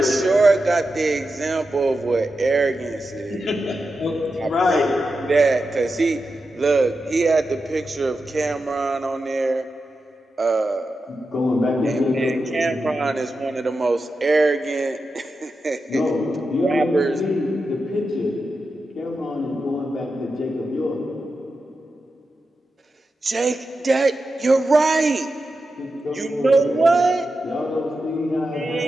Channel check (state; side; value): normal; both; correlation 0.90